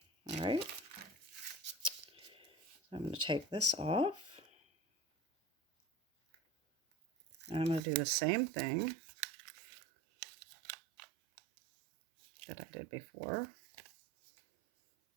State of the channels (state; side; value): drops out; left; at 7.8 s